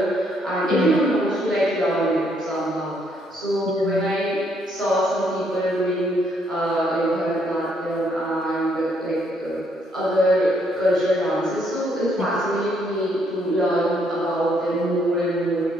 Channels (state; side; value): normal; both; correlation 0.71